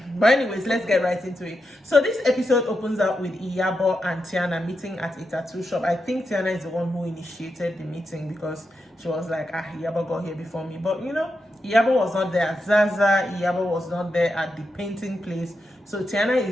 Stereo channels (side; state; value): both; normal; correlation 0.87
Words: But anyways, let's get right into it. So this episode opens up with Iyabo and Tiana meeting at a tattoo shop. I think Tiana is the one who initiated the meeting because she was like, Iyabo got here before me. But Iyabo was not there at Zaza. Iyabo was not there at the painting place. So Tiana